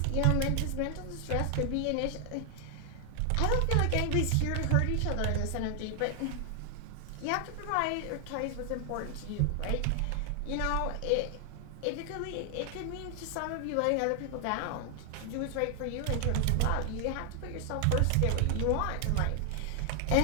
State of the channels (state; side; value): different; both; correlation 0.00